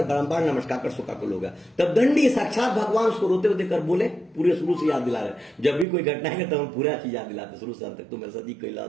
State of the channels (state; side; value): drops out; left; at 5.9 s